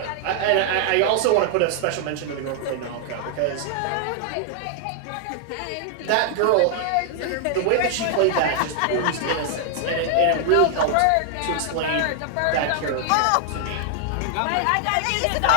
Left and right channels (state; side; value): different; both; correlation 0.00